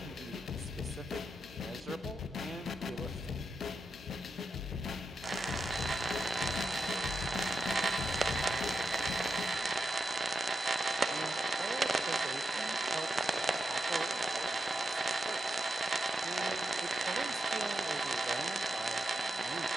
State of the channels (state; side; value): normal; both; correlation 0.87